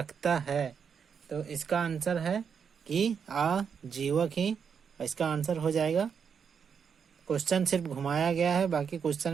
है। तो इसका आंसर है कि आजीवक ही इसका आंसर हो जाएगा। क्वेश्चन सिर्फ घुमाया गया है, बाकी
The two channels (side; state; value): left; quieter; 6.8 dB